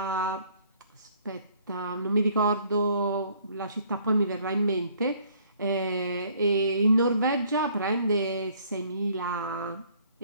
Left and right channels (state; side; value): inverted; both; correlation -0.61